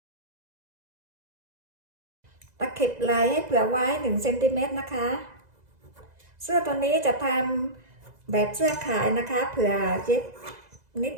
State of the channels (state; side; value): late; left; 2.0 ms